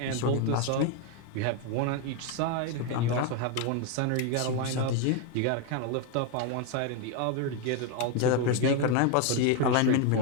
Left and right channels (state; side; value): different; both; correlation 0.01